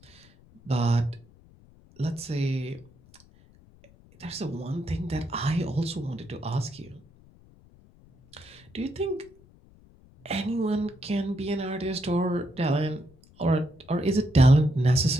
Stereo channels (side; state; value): left; noise; rumble, 26 dB below the sound